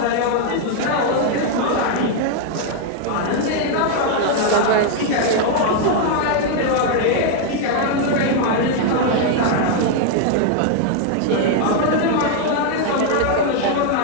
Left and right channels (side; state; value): both; different; correlation 0.00